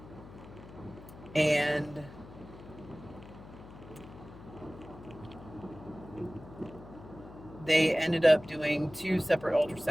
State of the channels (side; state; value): left; noise; hum, 17 dB below the sound